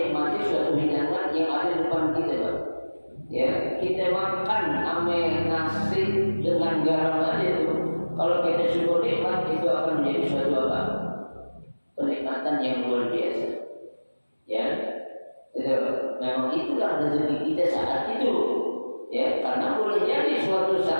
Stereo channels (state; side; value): inverted; both; correlation -1.00